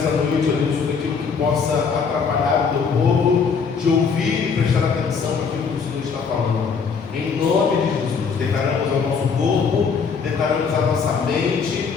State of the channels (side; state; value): right; quieter; 5.7 dB